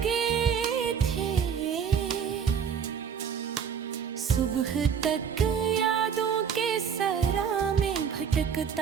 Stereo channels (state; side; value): quieter; left; 7.3 dB